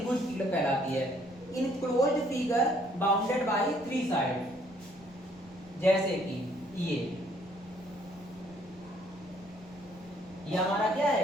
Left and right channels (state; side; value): noise; right; rumble, 25 dB below the sound